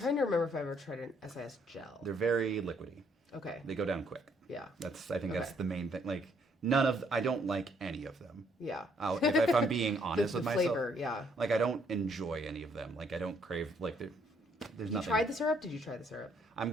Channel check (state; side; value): normal; both; correlation 0.68